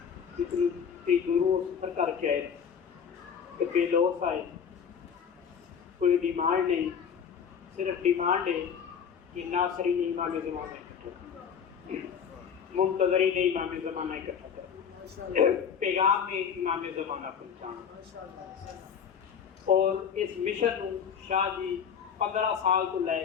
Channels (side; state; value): right; quieter; 7.3 dB